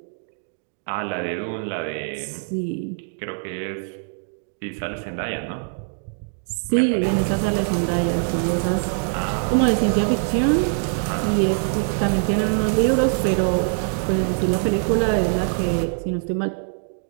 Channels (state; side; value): silent; left; digital silence